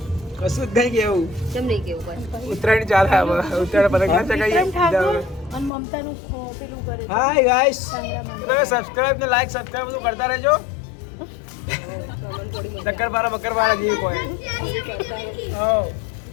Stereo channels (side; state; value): right; drops out; at 5.7 s